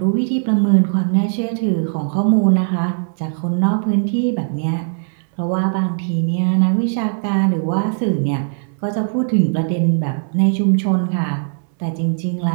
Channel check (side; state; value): left; silent; 67 dB below the other